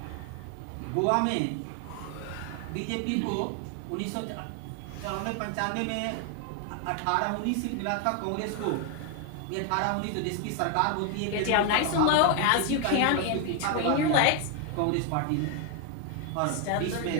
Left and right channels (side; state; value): both; different; correlation 0.01